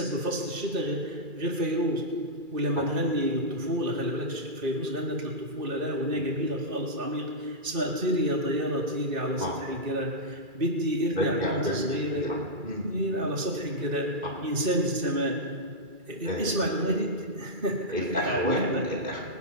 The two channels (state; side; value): late; left; 2.3 ms